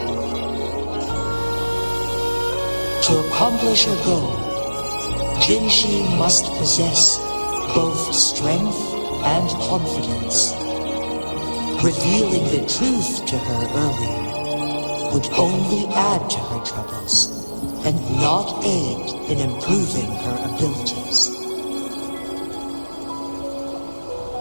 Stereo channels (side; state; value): both; inverted; correlation -1.00